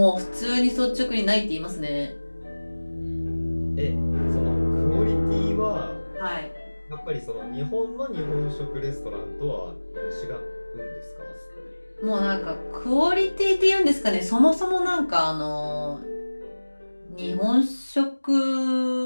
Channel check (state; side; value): inverted; both; correlation -1.00